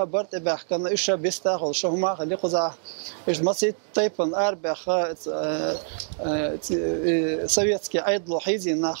تبع كان ايش بيستاهل شو ما خلي قزا ايش مسيت تايبن اربع سويتسكي ايدل حيزي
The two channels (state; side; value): silent; left; digital silence